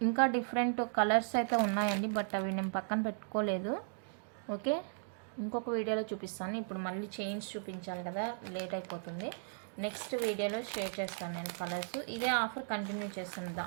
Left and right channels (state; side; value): silent; left; digital silence